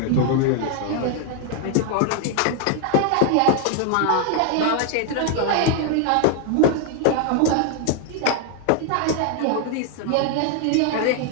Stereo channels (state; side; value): different; both; correlation 0.00